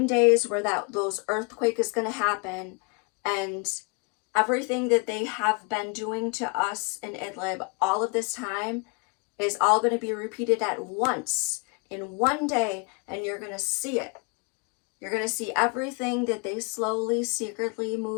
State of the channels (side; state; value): right; quieter; 34.0 dB